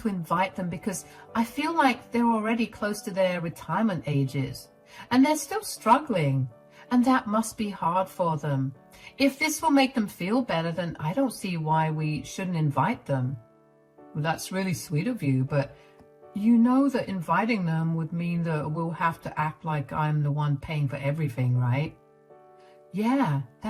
invite them because I feel like they're already close to their retirement ages, and they're still struggling, and that must be hard for them. If this will make them feel better, then I don't see why we shouldn't invite them. Well, that's really sweet of you, but you know that inviting them would mean that we'll have to act like I'm the one paying for everything, right? Yeah,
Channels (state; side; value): identical; both; correlation 1.00